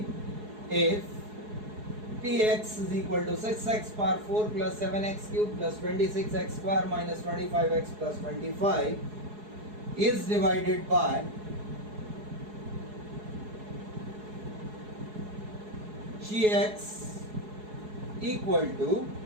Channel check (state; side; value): late; left; 4.7 ms